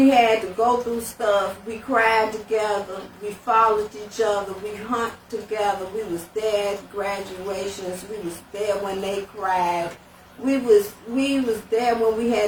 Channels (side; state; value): both; identical; correlation 1.00